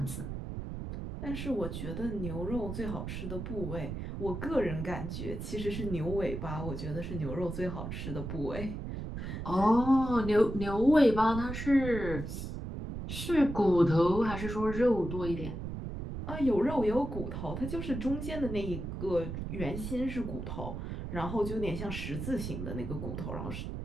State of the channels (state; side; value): noise; right; rumble, 6 dB below the sound